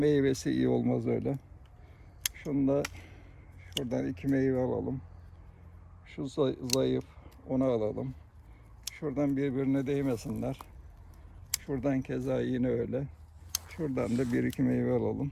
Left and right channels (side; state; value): both; identical; correlation 1.00